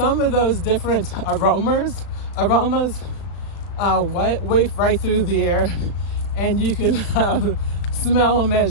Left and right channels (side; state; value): right; late; 35 ms